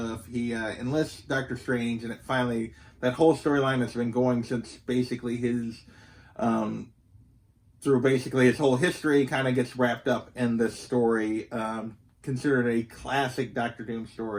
He enlists Doctor Strange, and that whole storyline that's been going since basically his through basically his whole history kind of gets wrapped up in this story. Considered a classic Doctor Doom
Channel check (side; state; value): both; identical; correlation 1.00